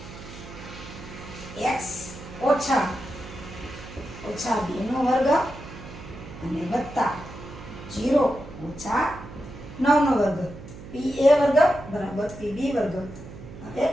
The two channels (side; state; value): right; noise; hum, 14 dB below the sound